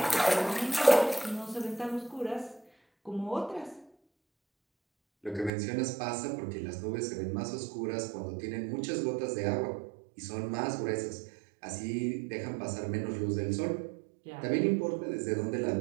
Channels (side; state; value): left; drops out; at 5.5 s